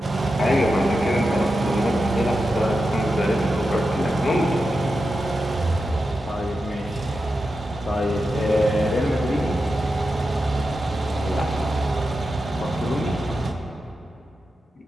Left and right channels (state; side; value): normal; both; correlation 0.90